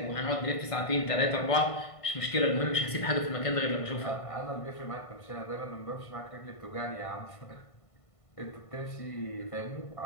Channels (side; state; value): right; late; 1.5 ms